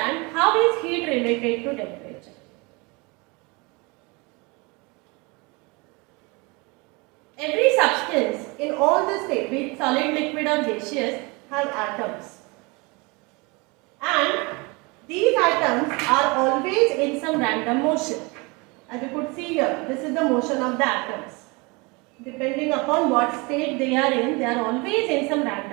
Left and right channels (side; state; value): left; quieter; 27.4 dB